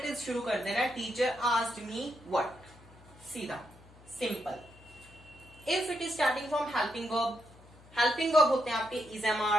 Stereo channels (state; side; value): noise; left; hum, 23 dB below the sound